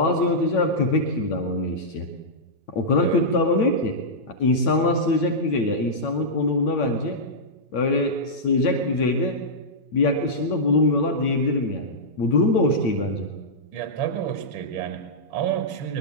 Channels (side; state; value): right; late; 8.9 ms